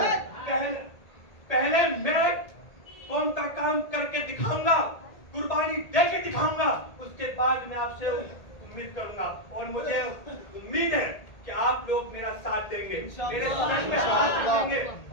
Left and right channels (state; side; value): late; right; 1.8 ms